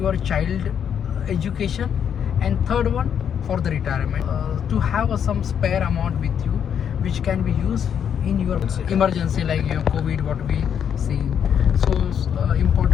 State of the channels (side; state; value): right; quieter; 8.3 dB